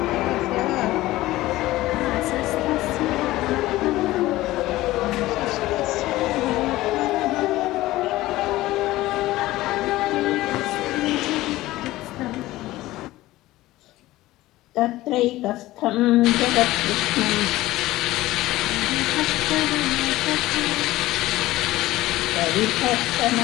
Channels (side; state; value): right; quieter; 17.1 dB